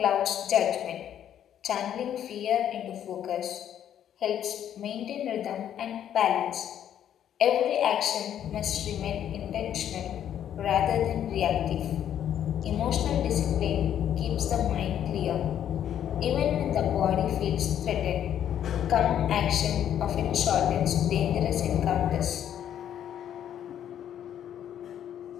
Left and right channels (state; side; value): quieter; right; 10.1 dB